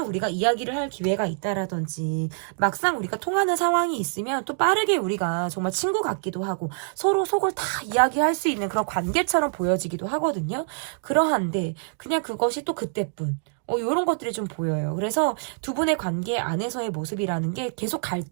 우리가 이야기를 할 기회가 있다라든지 막상 우리가 통하는 상황이 있으면 또 빠르게 우리가 정말 친구 같기도 하고 서로 속을 다 이야기할 수 있는 그런 관계처럼 보여지기도 하거든요. 그러한데 그냥 그것이 또 그때뿐, 이런 것들이 좀 보여요. 그래서 두 분의 관계 안에서의 모습이라는 게 계속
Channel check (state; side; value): silent; left; digital silence